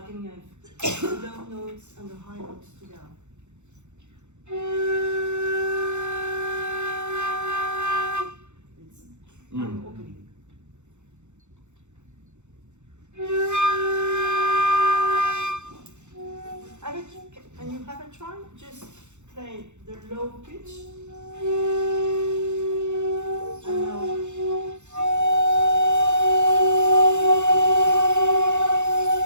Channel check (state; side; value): late; left; 0.83 ms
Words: can have the low notes and the high notes together. I'm opening. Can you have a try? Just play the low pitch. And now.